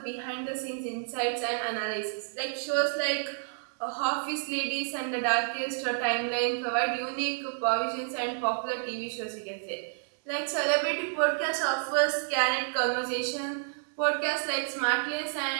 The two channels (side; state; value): left; silent; digital silence